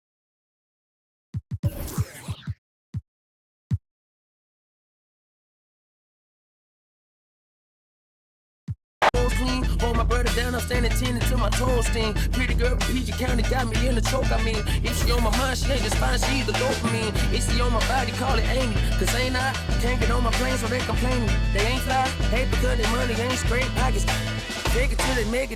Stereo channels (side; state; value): both; identical; correlation 1.00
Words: clean. Hold my brother down, I'm standing 10 until my toes sting. Pretty girl from PG County got me in the choke, I mean. If she on my mind, she ain't just fine, she either dopamine. If she on my body, call it Amy. Cause ain't I can't get on my plane, so they complaining. They ain't fly, hate because their money ain't straight pockets. Take it till they make